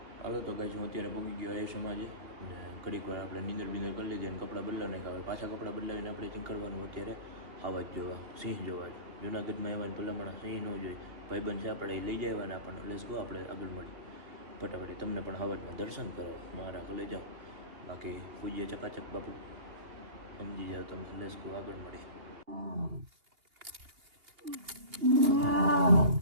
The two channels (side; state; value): left; late; 2.8 ms